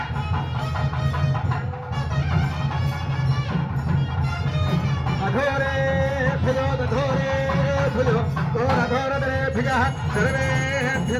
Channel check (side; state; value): both; identical; correlation 1.00